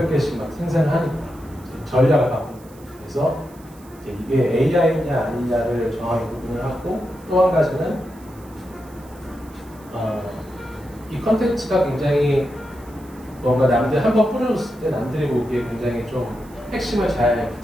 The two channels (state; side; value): noise; right; hiss, 26 dB below the sound